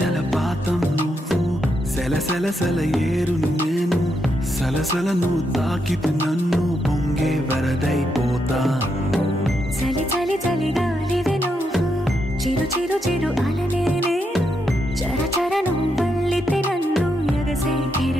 జలపాతం నువ్వు, సెల సెల సెల ఏరుని నేను, సలసల నువ్వు తాకితే నన్ను పొంగే వరదైపోతాను. చలి చలి చలి గాలివి నువ్వు, చిరు చిరు చిరు అలనే నేను, చర చర నువ్వు వల్లితే నన్ను ఎగసే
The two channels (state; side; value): normal; both; correlation 0.81